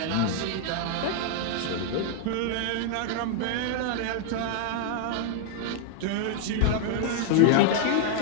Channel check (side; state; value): both; different; correlation 0.00